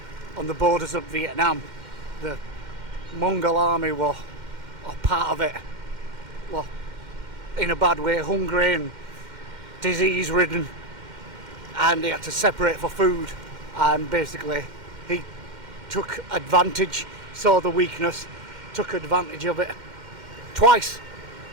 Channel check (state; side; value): late; left; 2.1 ms